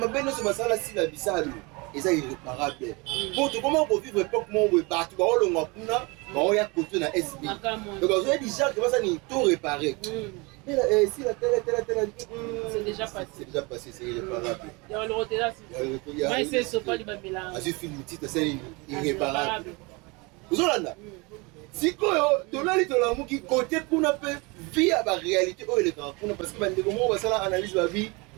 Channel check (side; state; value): left; quieter; 27.3 dB